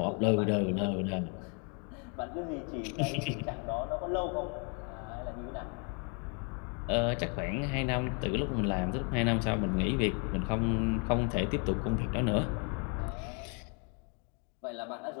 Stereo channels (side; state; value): right; quieter; 37.3 dB